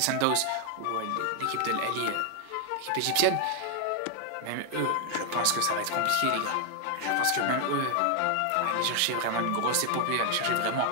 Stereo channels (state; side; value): different; both; correlation 0.00